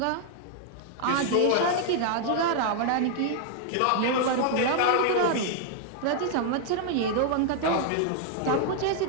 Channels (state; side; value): different; both; correlation 0.00